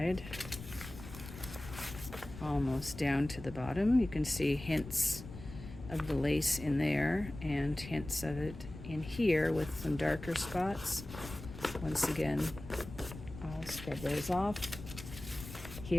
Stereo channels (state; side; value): noise; left; rumble, 13 dB below the sound